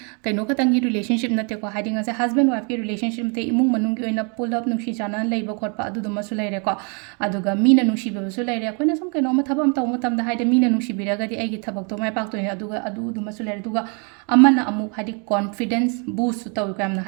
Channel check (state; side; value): quieter; left; 36.2 dB